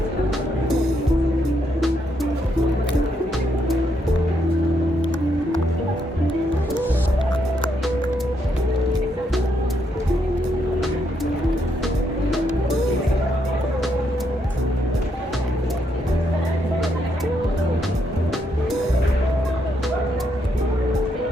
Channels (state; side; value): normal; both; correlation 0.77